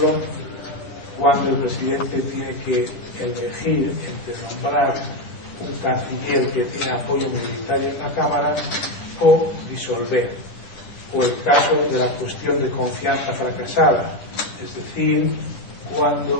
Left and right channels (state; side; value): late; right; 9.9 ms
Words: cuando el presidente tiene que elegir entre nombrar un canciller que tiene apoyo minoritario en la Cámara o disolver, o el caso de la cuestión de confianza fracasada, es decir,